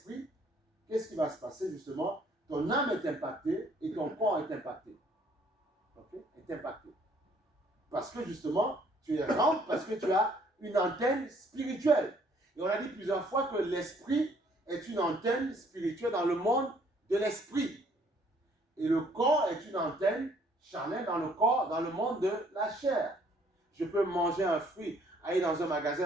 qu'est-ce qui va se passer justement? Ton âme est impactée et ton corps est impacté. Okay? Est impacté. Parce que justement, tu es rempli, parce que tu as une antenne spirituelle. Et on a dit plusieurs fois que l'esprit est une antenne spirituelle dans le monde de l'esprit. Et le corps est une antenne charnelle dans le corps, dans le monde de la chair. Je peux manger un fruit, aller dans un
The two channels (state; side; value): normal; both; correlation 0.62